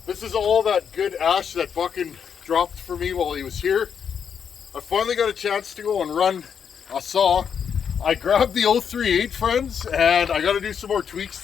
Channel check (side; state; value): right; quieter; 7.3 dB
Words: This is all that good ash that Buckin dropped for me while he was here. I finally got a chance to go and run a saw. I grabbed the 038, friends, and I got to do some more tweaks